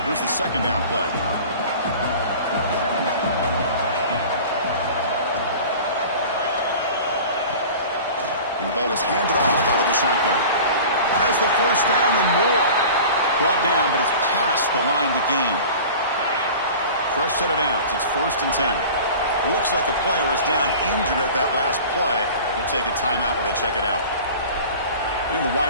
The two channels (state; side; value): inverted; both; correlation -0.39